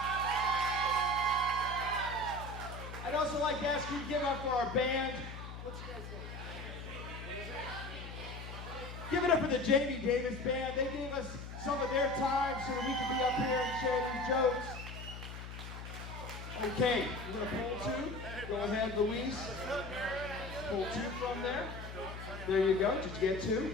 I'd also like to ask you to give up for our band. What's your guys' name? Give it up for the Jamie Davis Band. They gave us some of their time so that we could be up here and share these jokes. Okay, we're gonna pull 2. Go ahead, Louise. Pull 2 from there. There you go. Did you get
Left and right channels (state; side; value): noise; left; hum, 10 dB below the sound